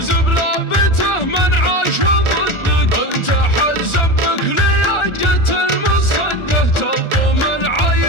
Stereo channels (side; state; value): right; late; 1.4 ms